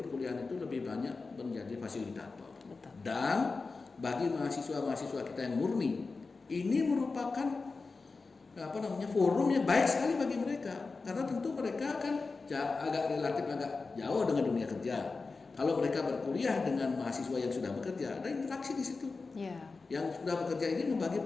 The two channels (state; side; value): quieter; right; 4.1 dB